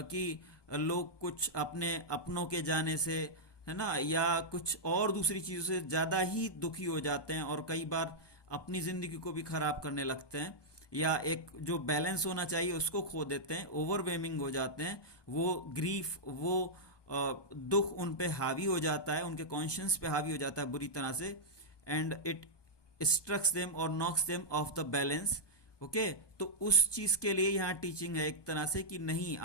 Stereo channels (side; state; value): right; late; 1.2 ms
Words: लोग कुछ अपने अपनों के जाने से, है ना, या कुछ और दूसरी चीज़ों से ज़्यादा ही दुखी हो जाते हैं, और कई बार अपनी ज़िंदगी को भी ख़राब करने लगते हैं, या एक जो बैलेंस होना चाहिए उसको खो देते हैं, ओवरवेमिंग हो जाते हैं। वो ग्रीफ, वो दुख उन पे हावी हो जाता है, उनके कॉन्शियंस पे हावी हो जाता है बुरी तरह से, एंड इट स्ट्रक्स देम और knocks them off the balance. Okay, तो उस चीज़ के लिए यहाँ टीचिंग है एक तरह से कि नहीं,